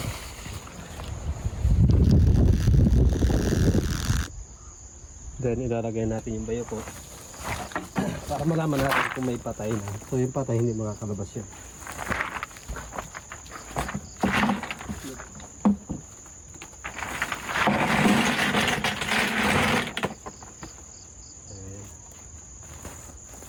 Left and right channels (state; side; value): identical; both; correlation 1.00